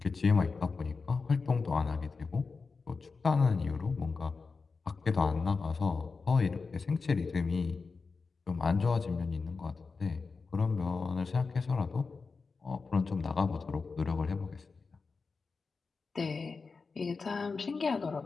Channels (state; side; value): quieter; right; 4.5 dB